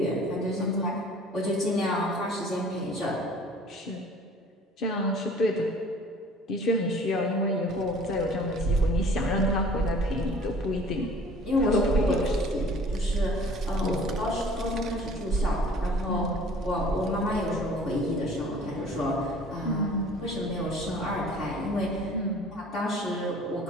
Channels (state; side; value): normal; both; correlation 0.50